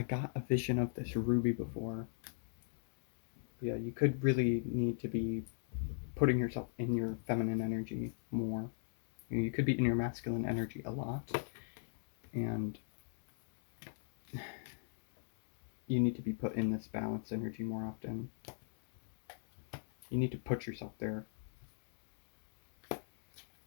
got a vision of this ruby before. Yeah, you could really need to be putting yourself in your feminine energy more. You could be in your masculine energy a lot, and you need to be put in this balanced energy more often. You need to put yourself there.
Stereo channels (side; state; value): right; silent; digital silence